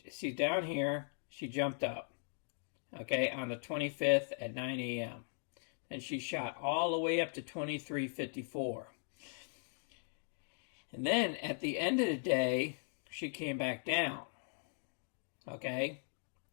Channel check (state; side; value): silent; right; digital silence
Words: down here. She jumped up. Okay, on the 25th at 9 a.m. Then she shot all the way up to 23.54. And then at the end of the day, she came back down. Okay,